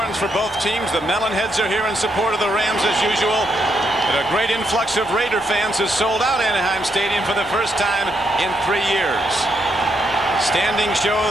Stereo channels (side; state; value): both; normal; correlation 0.78